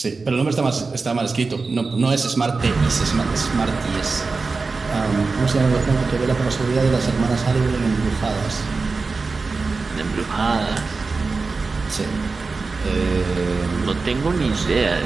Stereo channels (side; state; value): left; quieter; 4.1 dB